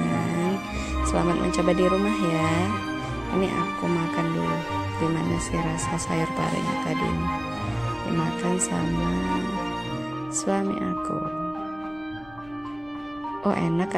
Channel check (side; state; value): left; noise; rumble, 24 dB below the sound